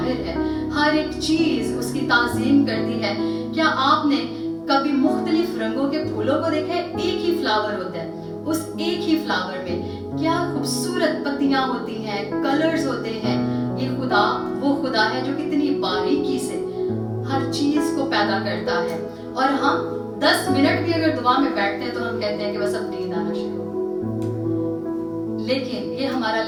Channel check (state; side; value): identical; both; correlation 1.00